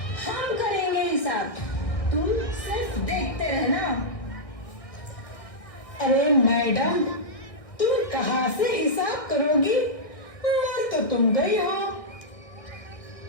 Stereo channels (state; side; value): late; right; 1.5 ms